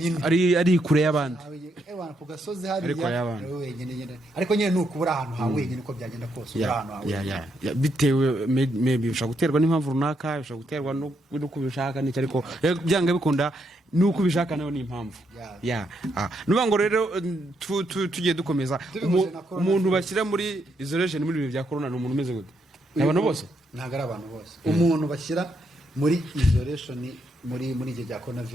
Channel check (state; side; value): normal; both; correlation 0.78